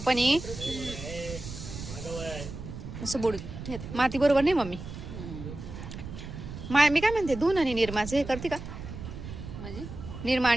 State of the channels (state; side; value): noise; right; rumble, 10 dB below the sound